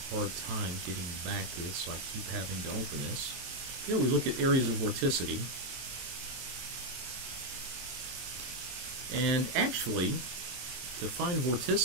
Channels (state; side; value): late; left; 23 ms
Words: hard time getting back to this, so I keep having to open this. Here we look at areas of vorticity. And actually, to find